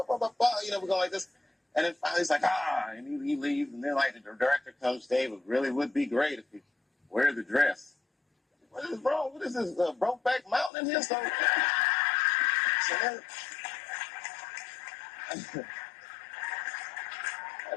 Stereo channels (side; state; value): right; drops out; at 10.7 s